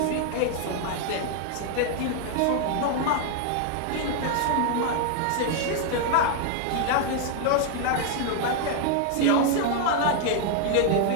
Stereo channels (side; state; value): both; different; correlation 0.00